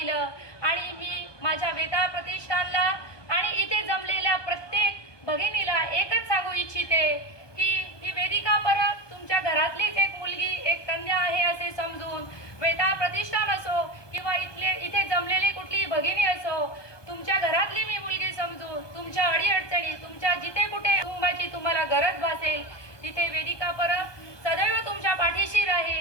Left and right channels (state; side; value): late; right; 1.2 ms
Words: आणि मी माझ्या वेताळ प्रतिष्ठानला आणि इथे जमलेल्या प्रत्येक भगिनीला एकच सांगू इच्छिते की ही वेदिका परब तुमच्या घरातलीच एक मुलगी, एक कन्या आहे असे समजून वेताळ प्रतिष्ठान असो किंवा इथे जमलेली कुठलीही भगिनी असो, तुमच्या घरातली मी मुलगी समजून तुमच्या अडीअडचणी, तुमच्या जिथे कुठे कुटुंबाची तुम्हाला गरज भासेल तिथे वेदिका परब सदैव तुमच्या पाठीशी